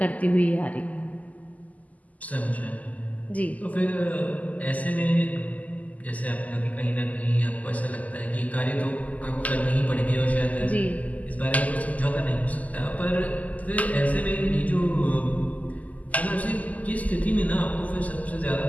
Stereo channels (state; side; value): late; right; 0.075 ms